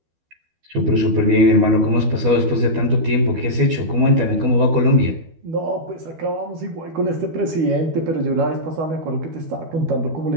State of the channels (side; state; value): left; late; 12 ms